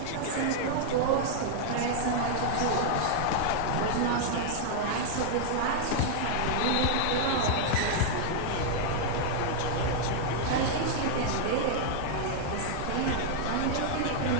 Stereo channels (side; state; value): both; different; correlation -0.01